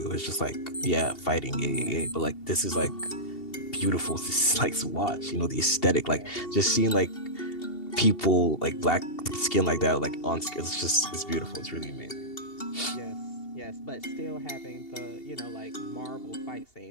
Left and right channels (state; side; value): late; right; 2.7 ms